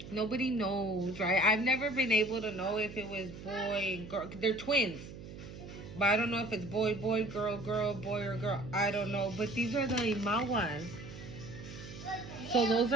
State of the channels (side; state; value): right; noise; hum, 13 dB below the sound